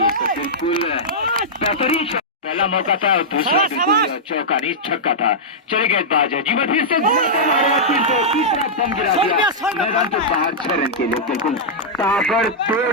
बिल्कुल बेहतरीन। पहला मौका था और दूसरा बिल्कुल चौका नहीं छक्का था। चले गेंदबाज है जीवन, फिर से तीसरा बम गिरा दिया मैदान के बाहर 6 रन के लिए। बिल्कुल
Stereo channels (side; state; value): both; normal; correlation -0.10